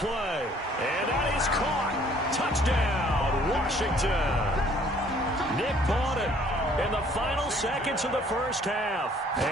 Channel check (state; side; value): normal; both; correlation 0.59